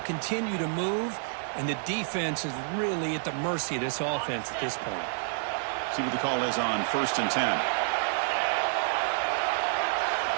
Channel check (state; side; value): silent; left; 58 dB below the other